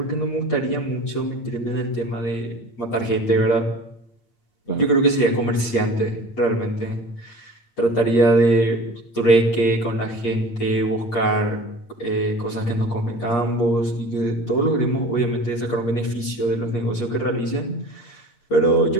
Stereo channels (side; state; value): right; late; 8.4 ms